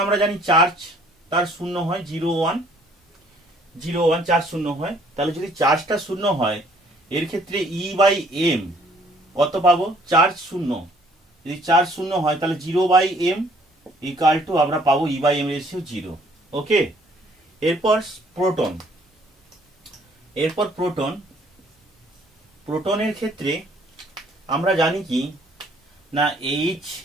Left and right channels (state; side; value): normal; both; correlation 0.60